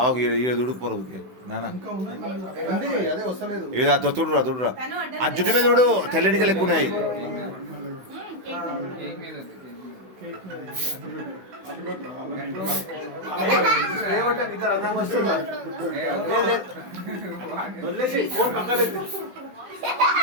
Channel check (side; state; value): left; late; 16 ms